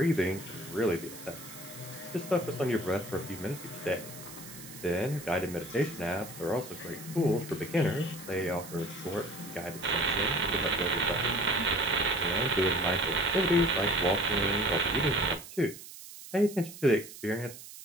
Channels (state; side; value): noise; right; hiss, 15 dB below the sound